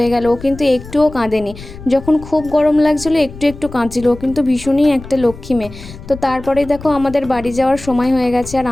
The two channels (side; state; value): left; noise; rumble, 15 dB below the sound